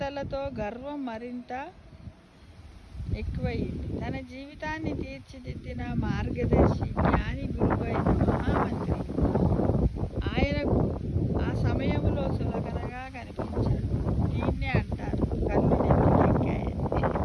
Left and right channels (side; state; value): both; identical; correlation 1.00